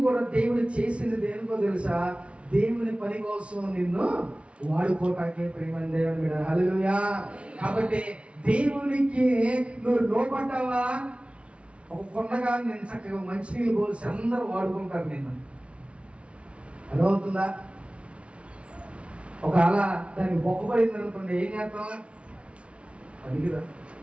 కూడా దేవుడు చేసింది దేనికో తెలుసా? దేవుని పని కోసం నిన్ను వాడుకోటాకే. ప్రేమ దేవుని మీద హల్లెలూయా. కాబట్టి దేవునికి నువ్వు లోపడ్డావా? ఒక కొండగా నేను చక్కగా మంచినీళ్ళు పోసి అందరూ వాడుకుంటారు నిన్ను. అర్థమవుతుందా? ఒకవేళ దానికి బొక్కపడింది అనుకోండి, ఏం చేస్తాం? అడిగిరా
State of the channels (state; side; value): late; left; 0.061 ms